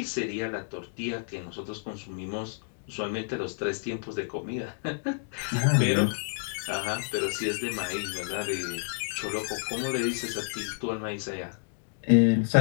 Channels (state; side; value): silent; right; digital silence